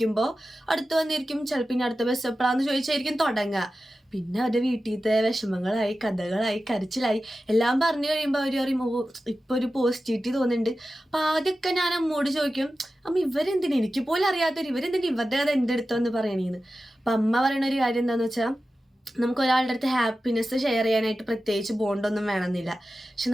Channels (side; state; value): both; normal; correlation 0.94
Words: അടുത്ത് വന്നിരിക്കും. ചിലപ്പോൾ ഇനി അടുത്ത ബസ് എപ്പോഴാന്ന് ചോദിച്ചായിരിക്കും തുടങ്ങുക. പിന്നെ അവരുടെ വീട്ടിലത്തെ വിഷമങ്ങളായി, കഥകളായി, കരച്ചിലായി എല്ലാം പറഞ്ഞു കഴിയുമ്പോൾ അവർ പറയും, ഓ ഇപ്പൊ ഒരു പോസിറ്റിവിറ്റി തോന്നുന്നുണ്ട്. അപ്പൊ ആദ്യമൊക്കെ ഞാൻ അമ്മോട് ചോദിക്കും, അമ്മ ഇവരെന്തിനാ, എനിക്ക് പോലും അറിയാത്തവർ ഇവരെന്തിനാ ഇവരുടെ കഥ എൻ്റെ അടുത്തെന്ന് പറയണേന്ന്. അപ്പൊ അമ്മ പറയണ ഒരു കാര്യം എന്താന്ന് വെച്ചാൽ, നമുക്ക് ഒരാളുടെ അടുത്ത് ഹാപ്പിനെസ് ഷെയർ ചെയ്യാനായിട്ട് പ്രത്യേകിച്ച് ബോണ്ടൊന്നും വേണമെന്നില്ല. പക്ഷെ